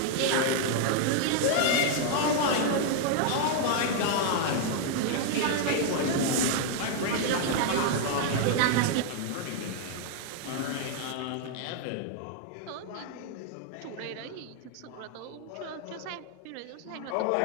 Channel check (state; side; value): different; both; correlation 0.00